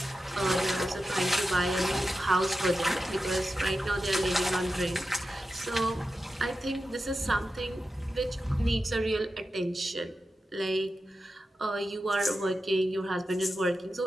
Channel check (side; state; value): both; normal; correlation 0.91